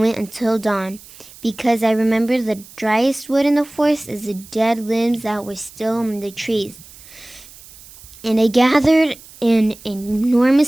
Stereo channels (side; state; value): right; noise; hiss, 21 dB below the sound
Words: until dawn, because I remember the driest wood in the forest is the dead limbs that were still on the trees. And I gathered an